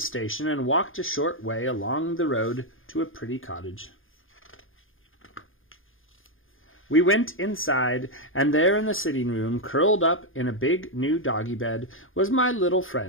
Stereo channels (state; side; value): late; right; 0.59 ms